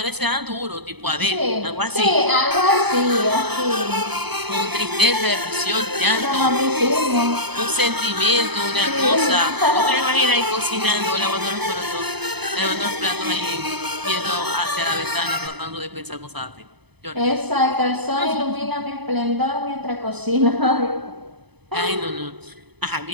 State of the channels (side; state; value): left; late; 0.99 ms